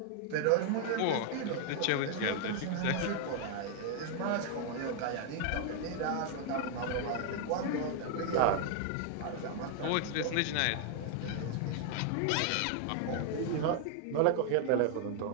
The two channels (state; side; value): different; both; correlation 0.00